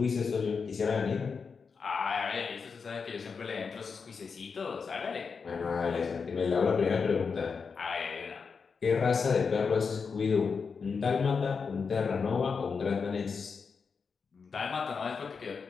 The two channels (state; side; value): quieter; right; 5.4 dB